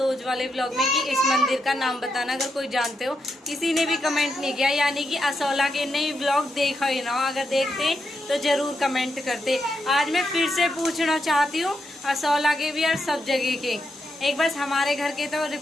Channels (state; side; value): normal; both; correlation 0.83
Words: वाले व्लॉग में, कि इस मंदिर का नाम बताना अगर कोई जानते हो। किसी ने भी कमेंट नहीं किया, यानी कि असोला के नए व्लॉग देखा ही ना, अगर देखते तो जरूर कमेंट करते। आज मैं फिर से पूछना चाहती हूँ असोला के भी और सब जगह के, एक बस हमारे घर के तो